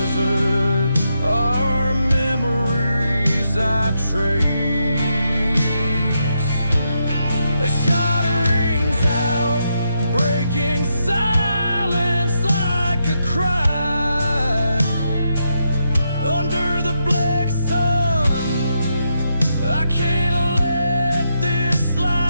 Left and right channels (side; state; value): both; inverted; correlation -0.82